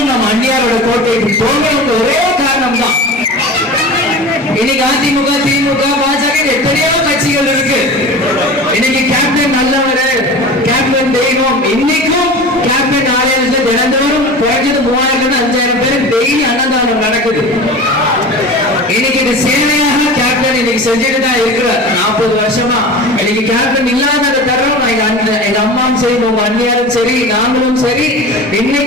நம்ம அந்நியாரோட கோட்டைக்கு போகணும். ஒரே காரணம் தான். இன்னைக்கு அதிமுக, திமுக, பாஜக எத்தனையோ கட்சிகள் இருக்கு. இன்னைக்கு கேப்டன் நல்லவர், கேப்டன் தெய்வம். இன்னைக்கும் கேப்டன் ஆலயத்துல தினந்தோறும் குறைஞ்சது 3000 5000 பேர் டெய்லி அன்னதானம் நடக்குது. இன்னைக்கு இது சேவையாக கேப்டன் இன்னைக்கு செஞ்சுட்டு தான் இருக்கிறார் 40 வருஷமா. இன்னைக்கு கேப்டன் இல்லாத தருணம் எங்க அம்மாவும் சரி, உங்க அண்ணியாரும் சரி, நாங்களும் சரி,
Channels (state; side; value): normal; both; correlation 0.34